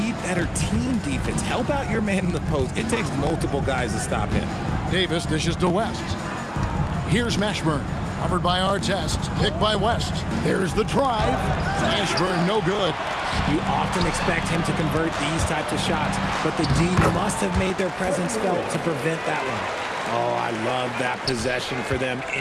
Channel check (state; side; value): identical; both; correlation 1.00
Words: better team defense. Help out your man in the post. It takes multiple guys to stop him. Davis dishes to West. Here's Mashburn. Covered by Artest. Picked by West. There's the drive. Mashburn no good. You often expect him to convert these types of shots, but the D must have made their presence felt to prevent that one. Oh, I love that possession for them,